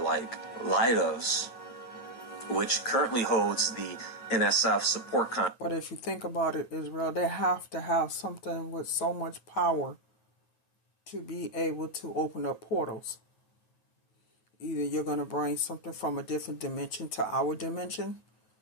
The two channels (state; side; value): late; right; 9.2 ms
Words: Leidos, which currently holds the NSF support contract? But if you think about it, Israel, they have to have something with so much power to be able to open up portals. Either you're going to bring something from a different dimension to our dimension,